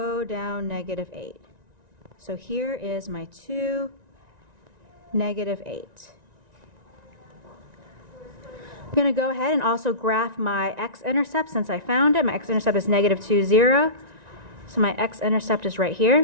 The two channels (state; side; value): late; left; 1.9 ms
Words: down negative 8. So here is my 2, negative 8. I'm going to go ahead and also graph my x-intercept since I found it. My x-intercept is negative 2, 0. So my x-intercept is right